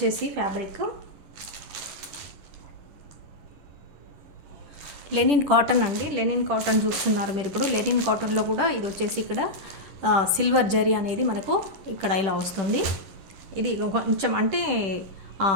ఫ్యాబ్రిక్ లెనిన్ కాటన్ అండి. లెనిన్ కాటన్ చూస్తున్నారు మీరు. ఇప్పుడు లెనిన్ కాటన్లో కూడా ఇది వచ్చేసి ఇక్కడ సిల్వర్ జరీ అనేది మనకు ఇక్కడ ఇలా వస్తుంది. ఇది కొంచెం అంటే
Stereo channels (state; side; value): late; left; 10 ms